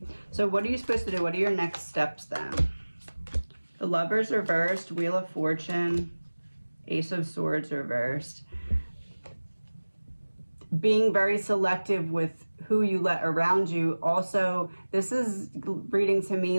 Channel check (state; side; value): inverted; both; correlation -1.00